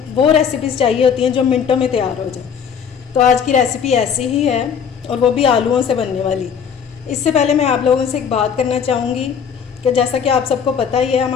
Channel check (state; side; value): quieter; right; 7.2 dB